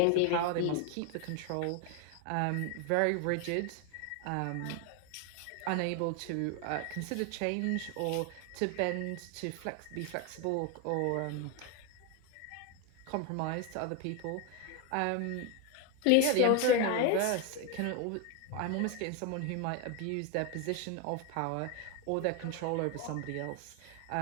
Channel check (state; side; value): different; both; correlation 0.01